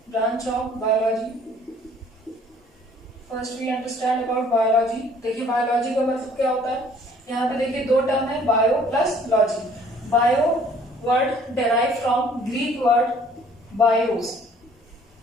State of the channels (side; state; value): both; normal; correlation 0.56